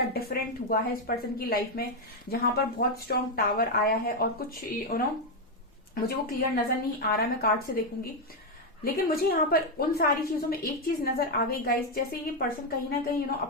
डिफरेंट हुआ है इस पर्सन की लाइफ में, जहां पर बहुत स्ट्रॉन्ग टावर आया है और कुछ मुझे वो क्लियर नजर नहीं आ रहा, मैं कार्ड से देखूंगी। लेकिन मुझे यहाँ पर उन सारी चीजों में एक चीज नजर आ गई गाइस, जैसे ये पर्सन कहीं ना कहीं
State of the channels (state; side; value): normal; both; correlation 0.04